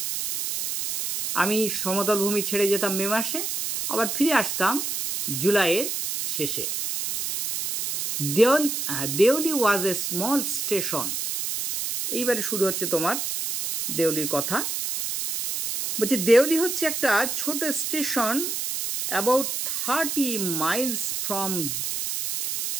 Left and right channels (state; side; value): noise; right; hiss, 2 dB below the sound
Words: আমি সমতল ভূমি ছেড়ে যেতাম মে মাসে, আবার ফিরে আসতাম জুলাইয়ের শেষে। দেউলি ওয়াজ এ স্মল স্টেশন। এইবারে শুরু হচ্ছে তোমার দেউলির কথা। বলছে দেউলি হচ্ছে একটা ছোট station about 30 Miles from